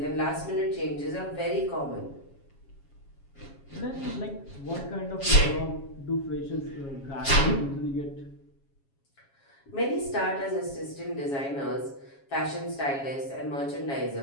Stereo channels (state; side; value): late; right; 7.3 ms